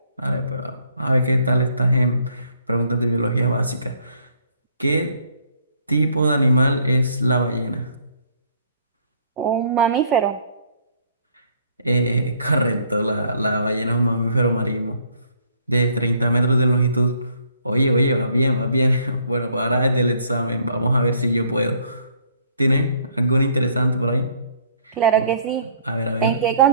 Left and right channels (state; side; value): inverted; both; correlation -0.63